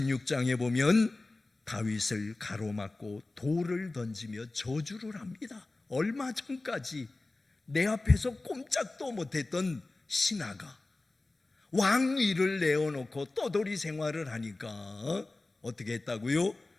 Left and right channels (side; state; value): right; quieter; 3.1 dB